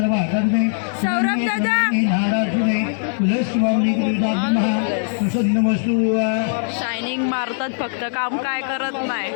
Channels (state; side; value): silent; right; 59 dB below the other